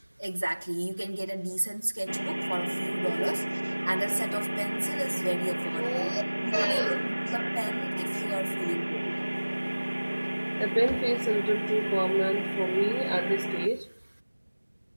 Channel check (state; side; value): inverted; both; correlation -1.00